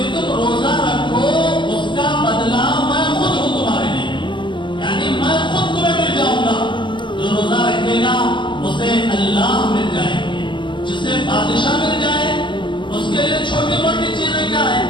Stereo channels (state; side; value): late; right; 0.23 ms